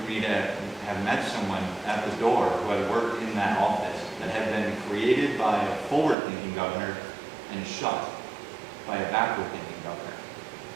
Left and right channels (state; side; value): drops out; left; at 6.2 s